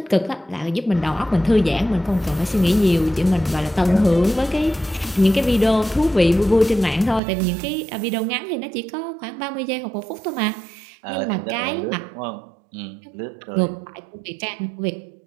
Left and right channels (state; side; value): drops out; left; at 7.2 s